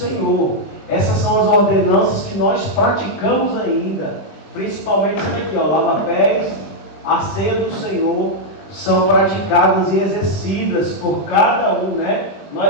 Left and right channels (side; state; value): right; late; 20 ms